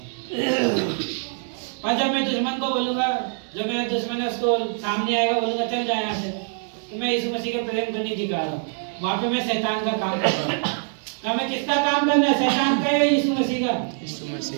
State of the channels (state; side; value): silent; left; 57 dB below the other